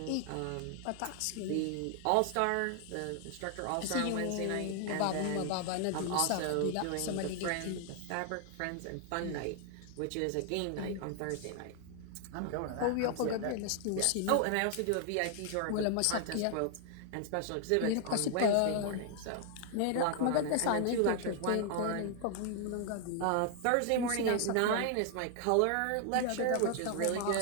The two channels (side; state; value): both; different; correlation 0.00